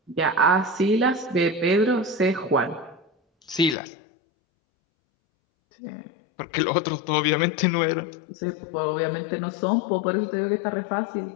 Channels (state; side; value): drops out; right; at 3.8 s